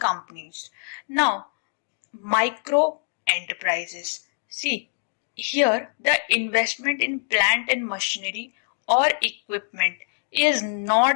Now micro enterprises. See, here the investment in plant and machinery or equipment is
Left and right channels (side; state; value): right; silent; digital silence